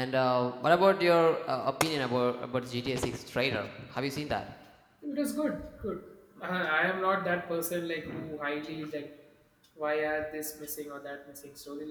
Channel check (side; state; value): both; identical; correlation 1.00